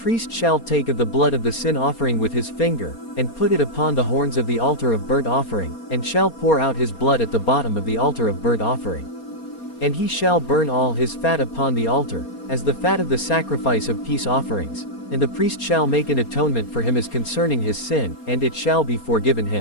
shall take of the blood of the sin offering with his finger, and put it upon the horns of the altar of burnt offering, and shall pour out his blood at the bottom of the altar of burnt offering. And he shall burn all his fat upon the altar, as the fat of the sacrifice of peace offerings. And the priest shall make an atonement for him as concerning his sin, and it shall be forgiven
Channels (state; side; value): late; right; 4.3 ms